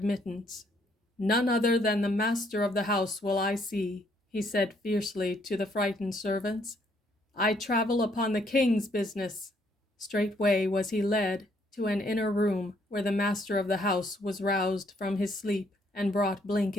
"None other than the master of the house will I see," he said fiercely to the frightened servants. "I travel upon the king's business." Straightway was he led to an inner room, where the master of the house was roused from his sleep and brought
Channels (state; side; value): normal; both; correlation 0.69